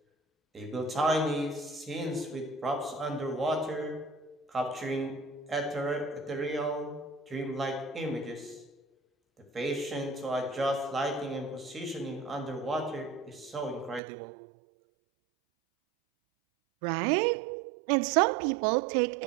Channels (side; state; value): left; drops out; at 14.0 s